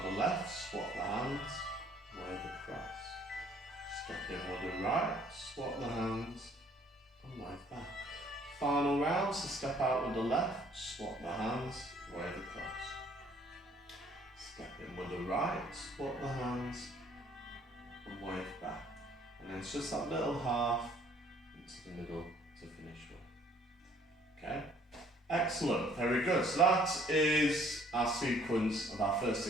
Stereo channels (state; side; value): normal; both; correlation 0.60